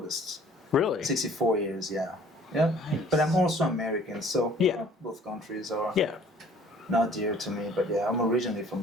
really? 64 years, yeah. Yeah. But I'm also American, so Yeah. both countries are Yeah. not dear to me. But yeah, I'm originally from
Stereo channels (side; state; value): both; normal; correlation 0.54